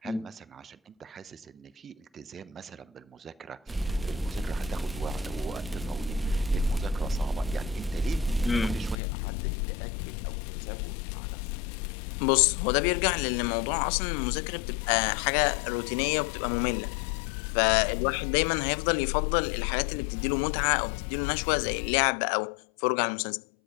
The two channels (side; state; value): right; drops out; at 9.0 s